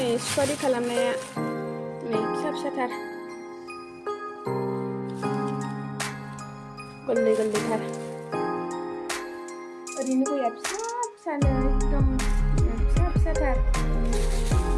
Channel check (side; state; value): both; identical; correlation 1.00